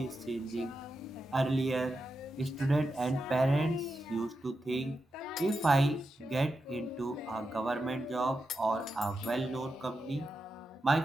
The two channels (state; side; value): normal; both; correlation 0.88